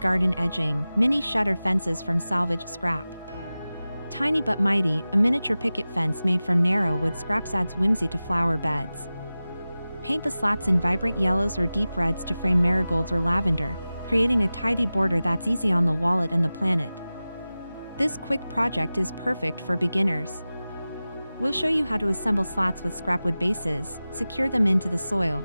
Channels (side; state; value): both; inverted; correlation -0.96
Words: edging, mini shutter fences from salvaged scrap. Tiny but mighty, a miniature picket fence made from narrow wood scraps adds whimsy to flower beds. Paint the slats in vibrant yellows or deep reds to frame marigolds or lavender, creating a tidy border that's easy on the wallet and the planet. This quick project is perfect for beginners. We'll show you how to assemble slats with scrapwood bases, secure them into the soil,